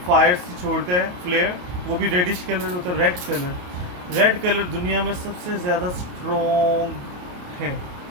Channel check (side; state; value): left; late; 28 ms